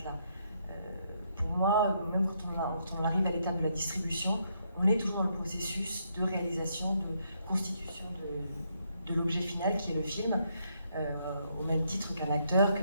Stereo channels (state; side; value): inverted; both; correlation -0.75